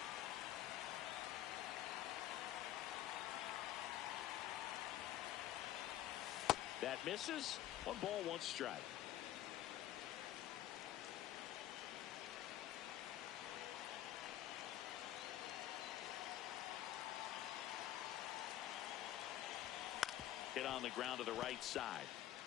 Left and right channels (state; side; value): quieter; right; 13.1 dB